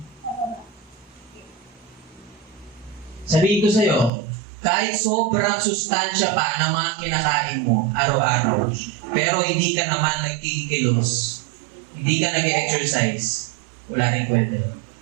Sabihin ko sa'yo, kahit sobrang sustansya pa ng mga kinakain mo araw-araw, pero hindi ka naman nagkikilos, hindi ka nag-exercise, wala rin kwenta.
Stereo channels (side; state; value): left; drops out; at 4.1 s